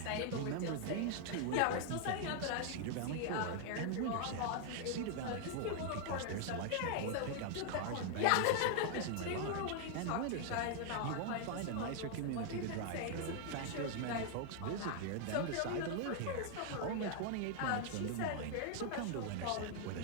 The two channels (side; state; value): both; different; correlation 0.00